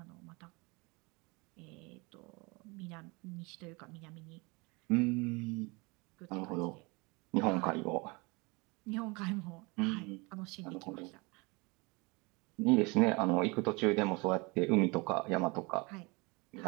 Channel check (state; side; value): quieter; left; 27.2 dB